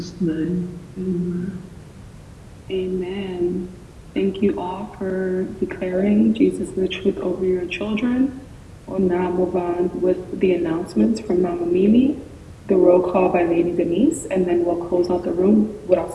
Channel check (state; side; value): identical; both; correlation 1.00